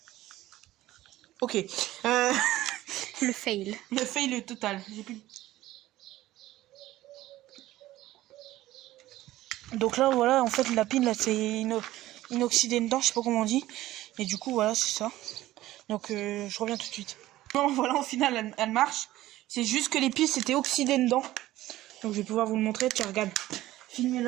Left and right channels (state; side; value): quieter; left; 15.6 dB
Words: Ok. Le fail. Le fail total. J'ai plus. Donc là voilà en fait la pile là c'est inoxydé dedans, je sais pas comment on dit. Et du coup voilà c'est ça. Donc je reviens tout de suite. Bon voilà au final elle marche. C'est juste que les piles c'était oxydé dedans. Donc je vais pouvoir vous le montrer. Tiens regarde.